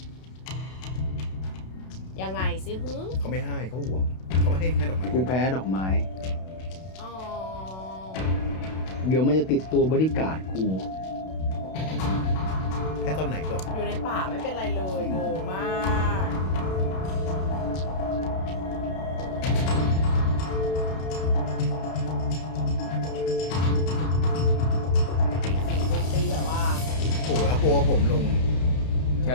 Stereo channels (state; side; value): late; right; 32 ms